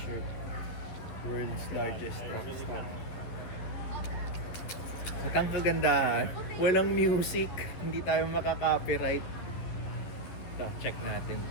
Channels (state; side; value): late; right; 11 ms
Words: World's largest truck stop. At ang kagandahan, walang music, hindi tayo makaka-copyright. Ito, check natin